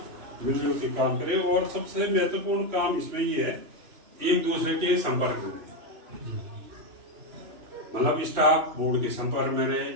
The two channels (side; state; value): left; late; 2.9 ms